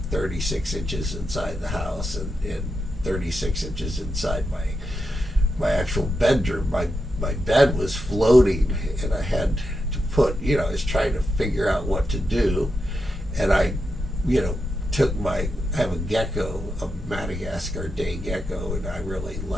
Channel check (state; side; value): normal; both; correlation 0.86